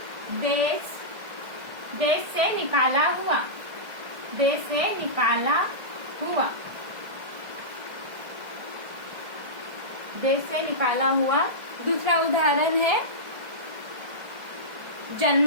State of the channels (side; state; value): left; late; 1.6 ms